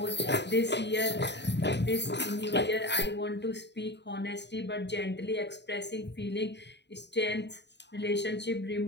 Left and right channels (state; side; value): late; right; 0.50 ms